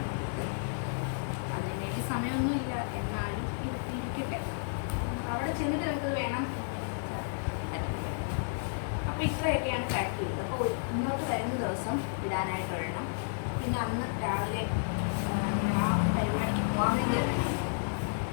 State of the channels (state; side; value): silent; right; digital silence